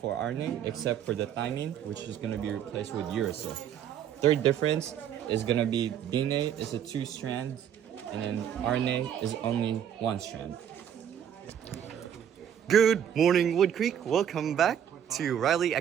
RNA, except for the thymine, which is going to be replaced with uracil. Third difference is going to be DNA is a 2 strands, and then RNA is only 1 strand. Good morning, Wood Creek. Welcome back to DRA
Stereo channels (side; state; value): left; quieter; 9.3 dB